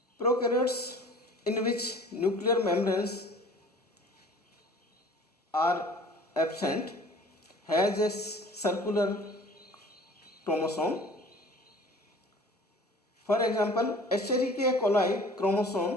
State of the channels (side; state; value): both; normal; correlation 0.47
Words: prokaryotes in which nuclear membranes are absent has a circular chromosome. For example, Escherichia coli